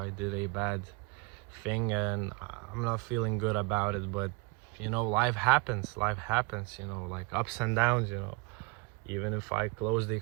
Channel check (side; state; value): left; quieter; 26.1 dB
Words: did a bad thing, and I'm not feeling good about it, but you know, life happens, you know, like ups and downs, you know. Even if I closed the